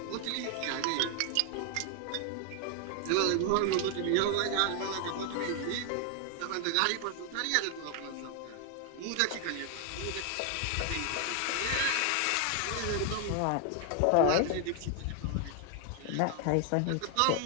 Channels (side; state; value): both; different; correlation 0.00